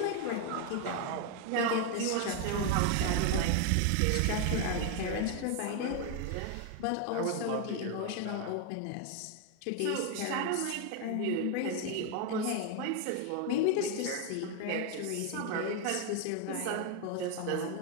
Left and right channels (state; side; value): different; both; correlation 0.01